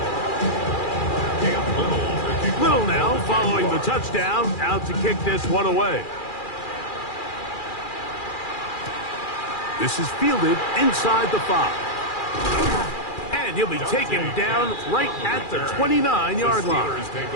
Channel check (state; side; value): late; right; 2.4 ms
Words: Cam Little to kick Little now following the touchdown, out to kick this one away. This is fielded inside the 5. And he'll be taken down right at the 29-yard line. The Steelers take